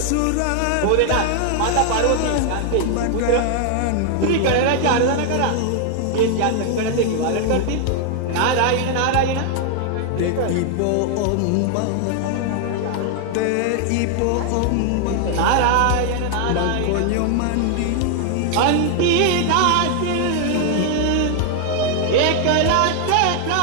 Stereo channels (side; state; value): both; different; correlation 0.00